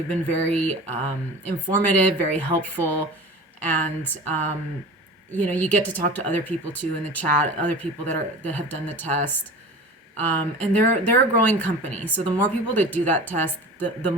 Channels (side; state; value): both; normal; correlation 0.36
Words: been very informative, very helpful, and you get to talk to other people too in the chat, other people that have done the test. And they're a growing company. So the more people that do that test, the